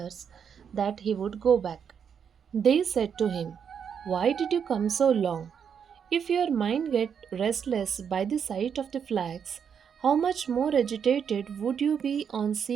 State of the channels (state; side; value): quieter; left; 7.4 dB